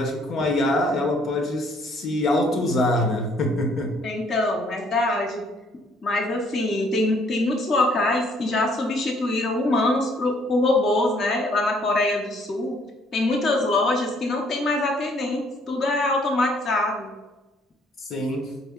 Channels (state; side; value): normal; both; correlation 0.64